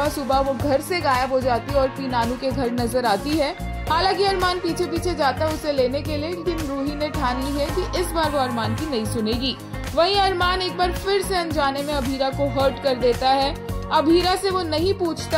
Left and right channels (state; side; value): identical; both; correlation 1.00